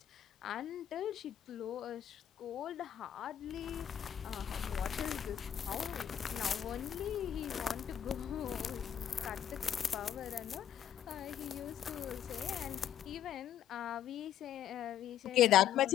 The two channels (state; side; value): quieter; right; 10.2 dB